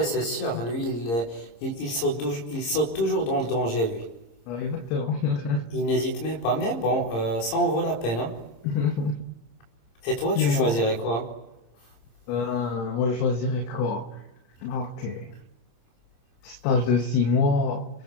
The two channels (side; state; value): right; late; 26 ms